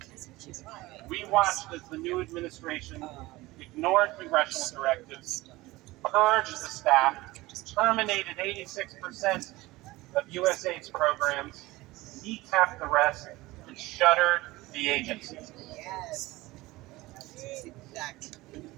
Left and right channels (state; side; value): quieter; left; 19.7 dB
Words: We watched as the new administration ignored congressional directives, purged the staff, terminated 86% of USAID's programs, kneecapped the rest, and shuttered the agency. Yes. Exactly.